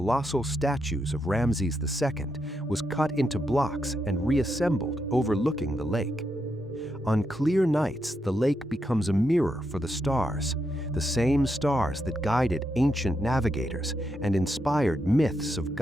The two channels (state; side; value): normal; both; correlation 0.82